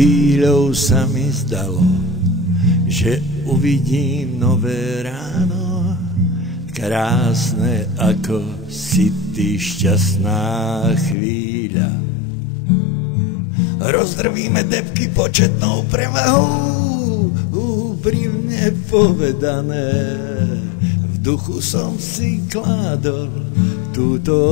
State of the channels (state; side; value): drops out; right; at 11.2 s